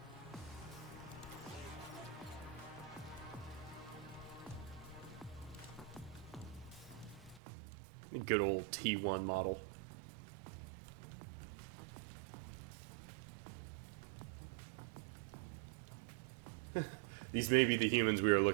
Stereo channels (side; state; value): left; drops out; at 7.4 s